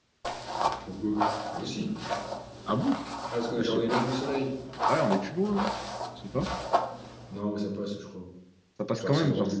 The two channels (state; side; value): identical; both; correlation 1.00